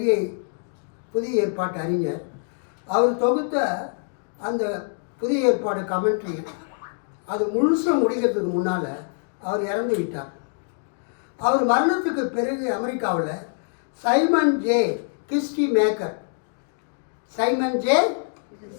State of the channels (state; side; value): silent; right; digital silence